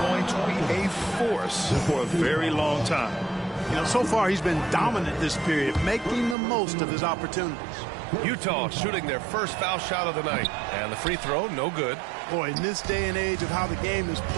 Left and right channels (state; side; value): drops out; left; at 6.4 s